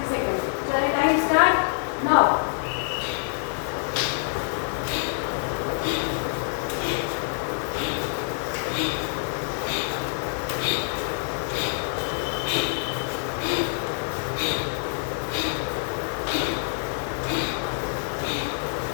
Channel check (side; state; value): right; silent; 56 dB below the other